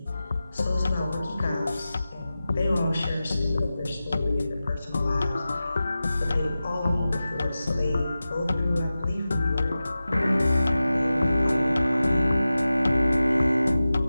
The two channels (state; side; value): inverted; both; correlation -0.94